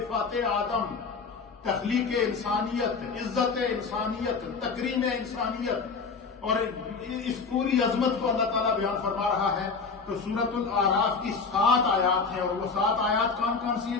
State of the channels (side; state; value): right; quieter; 4.8 dB